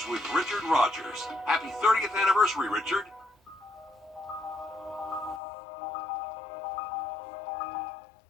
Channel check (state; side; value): drops out; right; at 5.4 s